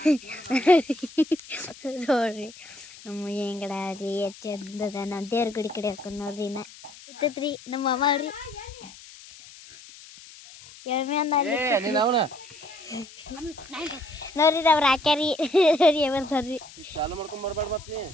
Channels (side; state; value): left; noise; hiss, 19 dB below the sound